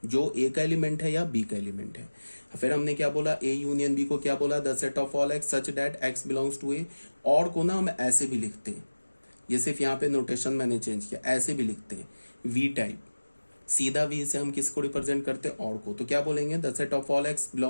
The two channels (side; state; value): both; inverted; correlation -1.00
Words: जो ए का एलिमेंट है या बी का एलिमेंट है। फिर हमने क्या बोला, ए यूनियन बी को क्या बोला, the set of all X such that X belongs to A. और को ना हम ऐसे भी लिखते हैं, ये सिर्फ यहाँ पे नोटेशन मैंने चेंज किया, ऐसे भी लिखते हैं वी टाइप, सीधा वी से हम किसको रिप्रेजेंट करते हैं, और को। तो क्या बोलेंगे, the set of all X